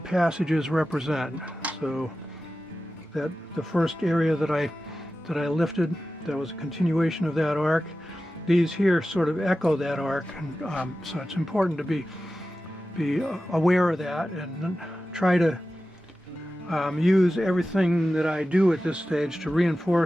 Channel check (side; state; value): both; normal; correlation 0.94